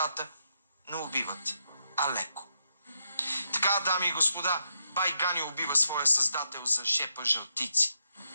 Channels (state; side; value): inverted; both; correlation -0.80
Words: но убиват Алеко. Така, дами и господа, бай Ганьо убива своя създател за шепа жълтици.